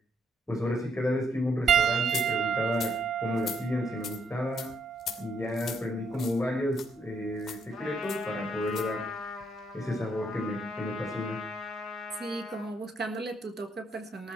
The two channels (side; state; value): both; normal; correlation 0.72